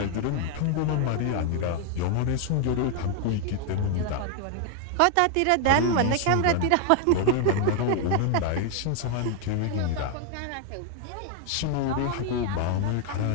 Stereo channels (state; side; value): different; both; correlation 0.00